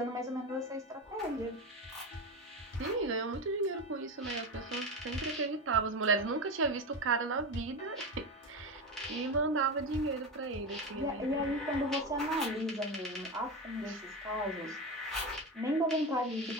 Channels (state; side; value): normal; both; correlation 0.19